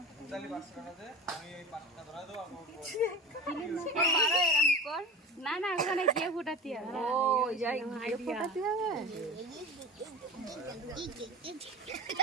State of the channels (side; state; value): both; normal; correlation 0.32